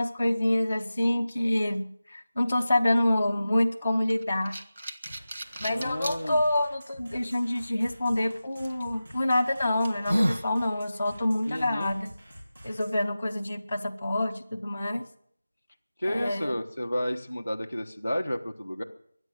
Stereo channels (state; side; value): inverted; both; correlation -0.95